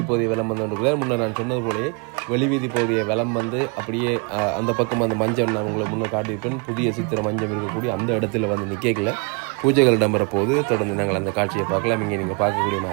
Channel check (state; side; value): quieter; left; 34.0 dB